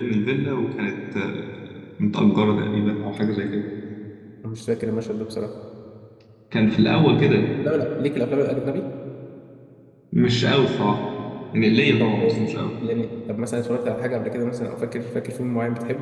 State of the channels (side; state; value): both; identical; correlation 1.00